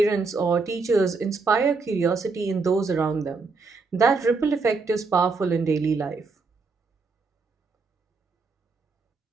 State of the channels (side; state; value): left; quieter; 4.2 dB